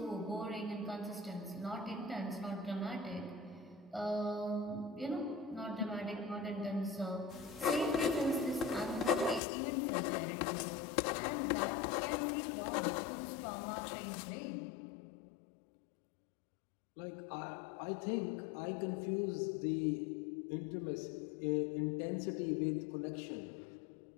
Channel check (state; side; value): drops out; right; at 9.4 s